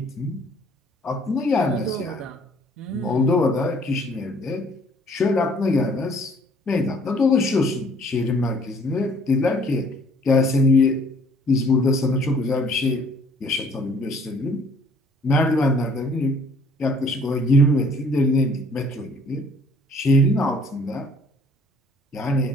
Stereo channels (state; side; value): normal; both; correlation 0.58